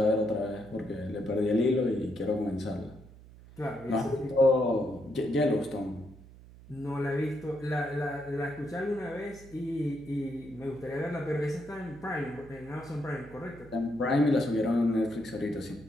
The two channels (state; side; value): noise; right; hum, 20 dB below the sound